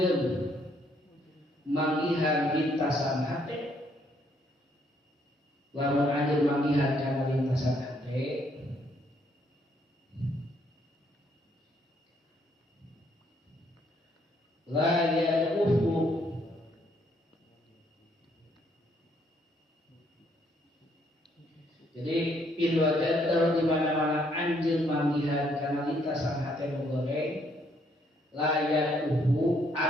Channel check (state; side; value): normal; both; correlation 0.69